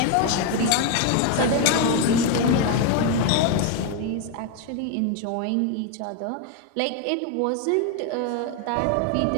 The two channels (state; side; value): different; both; correlation 0.01